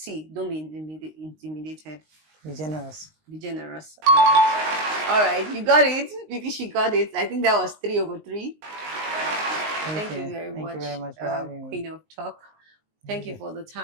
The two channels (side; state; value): left; late; 19 ms